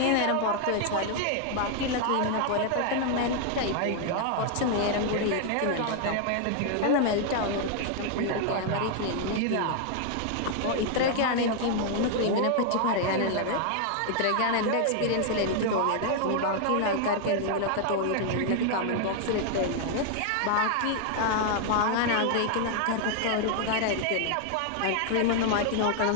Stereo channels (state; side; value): different; both; correlation 0.00